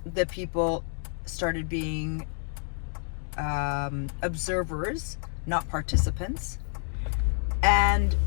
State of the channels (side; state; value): right; silent; 56 dB below the other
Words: the people started being observers, not participants. And